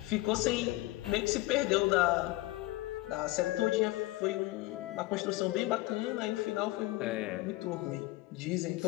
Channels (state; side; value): quieter; right; 19.4 dB